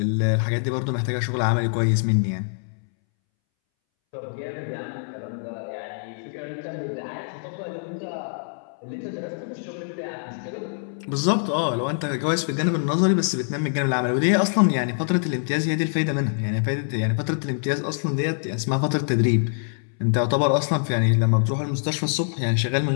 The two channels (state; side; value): silent; right; 62 dB below the other